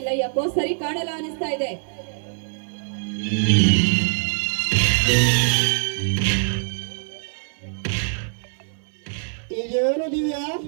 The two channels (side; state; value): left; silent; digital silence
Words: ಯಾಕೋ ಸರಿ ಕಾಣಲ್ಲ ಅನಿಸ್ತಾ ಇದೆ. ಇದೇನು ದಿವ್ಯಾ,